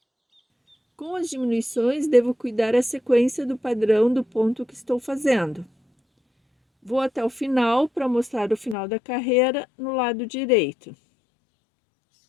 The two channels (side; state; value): right; drops out; at 8.8 s